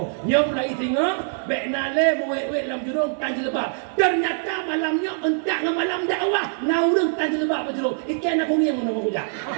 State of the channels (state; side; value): silent; left; 62 dB below the other